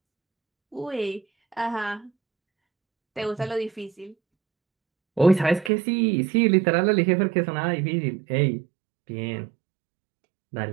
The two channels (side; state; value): left; drops out; at 5.7 s